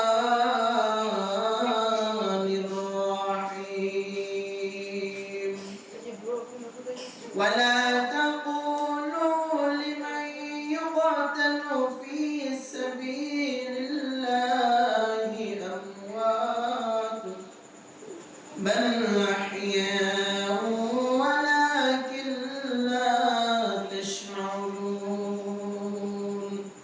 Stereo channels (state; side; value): identical; both; correlation 1.00